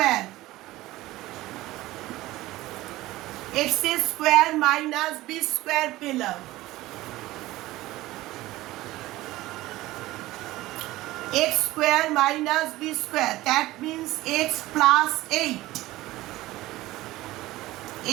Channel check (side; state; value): left; quieter; 17.5 dB